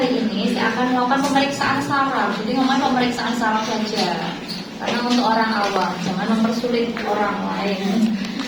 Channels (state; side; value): identical; both; correlation 1.00